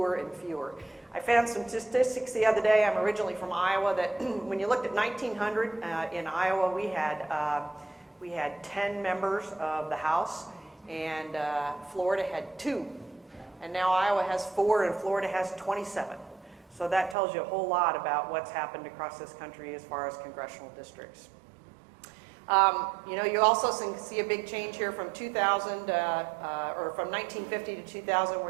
and fewer. I found some statistics the other day. I'm originally from Iowa, that when you looked at 1900 in Iowa, we had 10 members of the House, and Florida had 2. And now Iowa has 4 and Florida has 27. So that tells you a whole lot about what's happened across this country as far as congressional districts. You know, you also see a big change here from 2000, or from 1950 to 2000,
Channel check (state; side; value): drops out; left; at 17.2 s